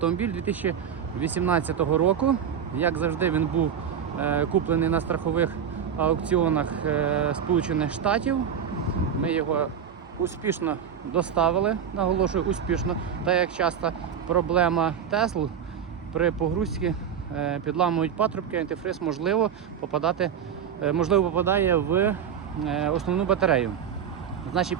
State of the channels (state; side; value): quieter; left; 8.2 dB